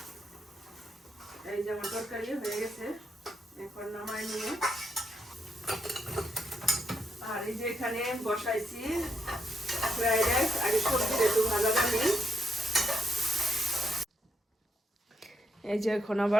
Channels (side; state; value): both; normal; correlation 0.80